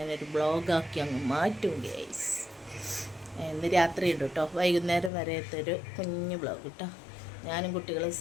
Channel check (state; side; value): drops out; right; at 5.1 s